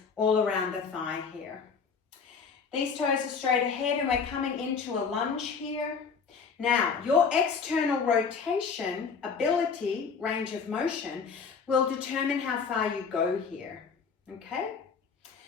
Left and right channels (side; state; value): right; quieter; 5.6 dB